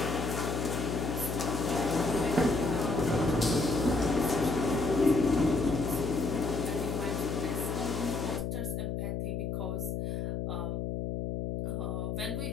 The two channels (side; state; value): left; noise; hum, 2 dB below the sound